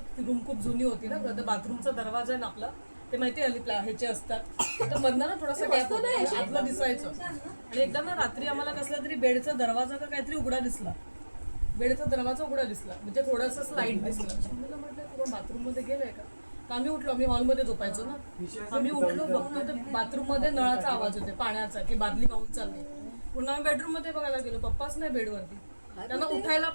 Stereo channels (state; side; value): inverted; both; correlation -1.00